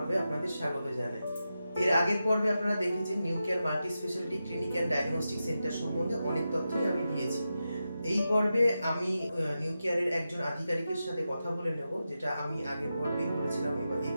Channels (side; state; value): both; inverted; correlation -0.90